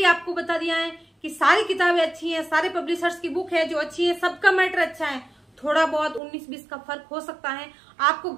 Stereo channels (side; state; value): left; drops out; at 6.2 s